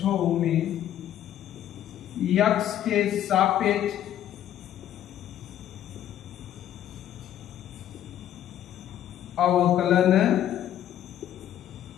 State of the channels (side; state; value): right; quieter; 11.3 dB